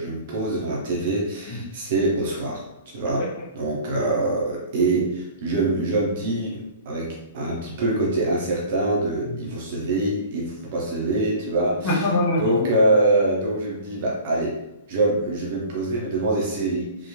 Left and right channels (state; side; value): inverted; both; correlation -0.43